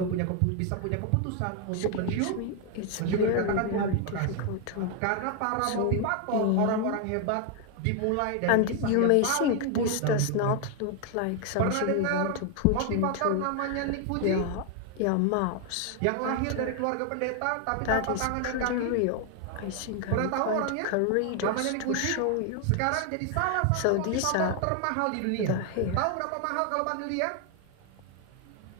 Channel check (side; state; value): both; different; correlation 0.00